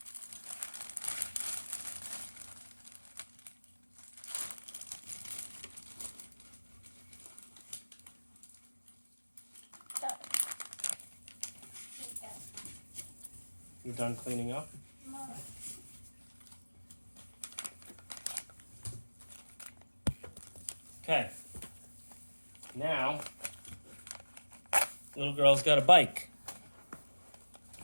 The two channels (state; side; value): inverted; both; correlation -1.00